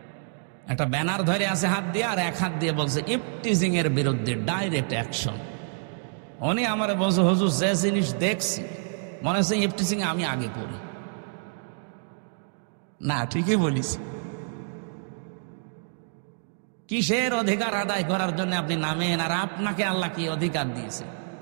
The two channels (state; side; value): silent; left; digital silence